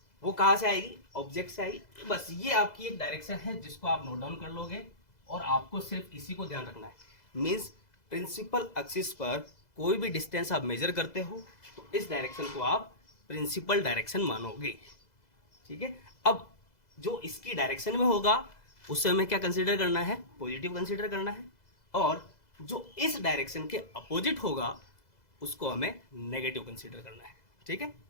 वो कहाँ से आएगी, ऑब्जेक्ट से आएगी। बस ये आपकी एक डायरेक्शन है जिसको आप नोट डाउन कर लोगे और आपको सिर्फ इसी को ध्यान रखना है। मीन्स प्रिंसिपल एक्सिस पर कोई भी डिस्टेंस आप मेजर करते हो तो इस डायरेक्शन को आप प्रिंसिपल डायरेक्शन मानोगे, ठीक है। अब जो इसकी डायरेक्शन में होगा उससे हमें क्या कंसीडर करना है, पॉजिटिव कंसीडर करना है, और जो इस डायरेक्शन के अपोजिट होगा उसको हमें नेगेटिव कंसीडर करना है, ठीक है।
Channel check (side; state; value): right; late; 2.0 ms